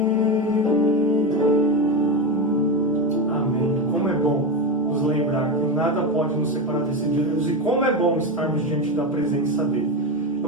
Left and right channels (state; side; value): normal; both; correlation 0.16